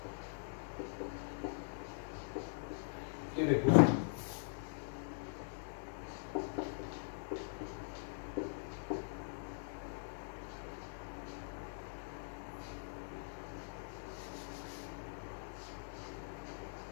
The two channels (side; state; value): right; silent; digital silence